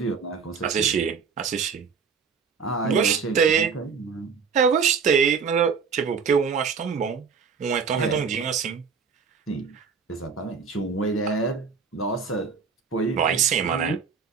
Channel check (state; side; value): quieter; left; 5.9 dB